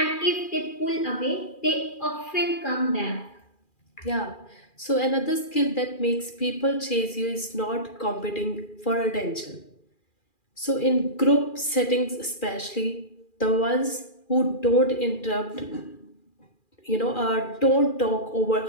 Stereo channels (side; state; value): right; late; 2.4 ms